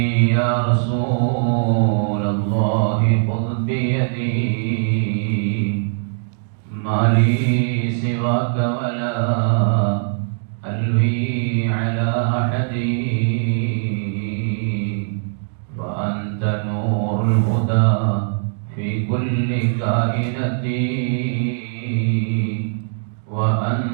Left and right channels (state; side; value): silent; left; digital silence